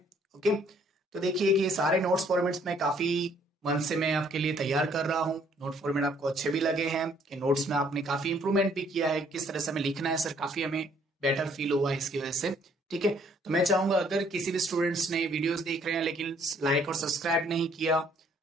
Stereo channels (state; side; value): normal; both; correlation 0.63